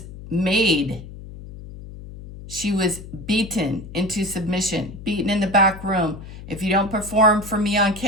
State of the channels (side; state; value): left; noise; hum, 14 dB below the sound